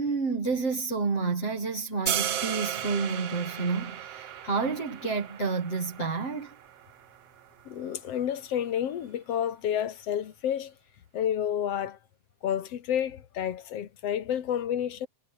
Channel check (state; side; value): late; right; 7.7 ms